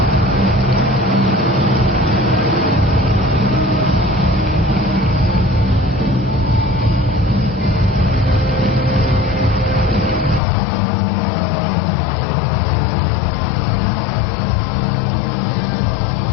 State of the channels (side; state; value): right; drops out; at 10.4 s